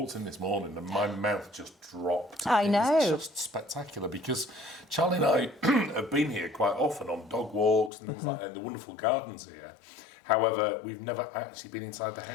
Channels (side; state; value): right; drops out; at 7.9 s